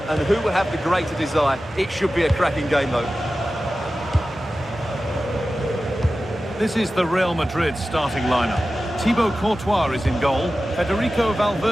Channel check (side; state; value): both; normal; correlation 0.94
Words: and who will have the greater desire? It should be a cracking game, though. This is the Real Madrid starting lineup. Thibaut Courtois is in goal. Federico